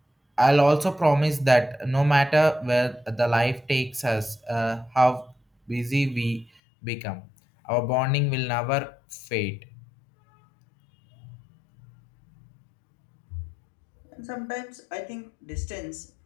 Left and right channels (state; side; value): drops out; right; at 6.5 s